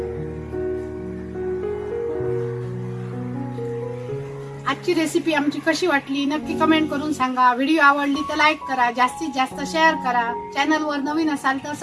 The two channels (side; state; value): both; identical; correlation 1.00